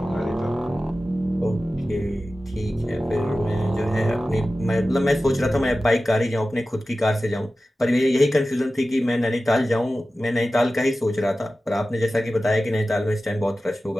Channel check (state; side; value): normal; both; correlation 0.95